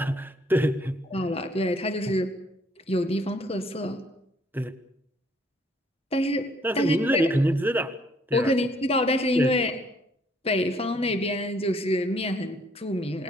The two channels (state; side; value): normal; both; correlation 0.65